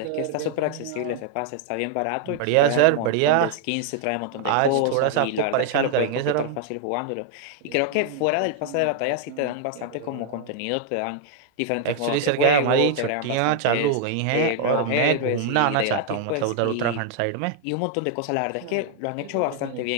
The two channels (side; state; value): both; different; correlation 0.00